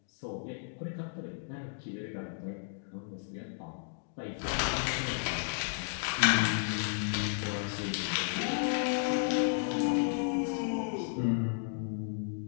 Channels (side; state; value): right; silent; digital silence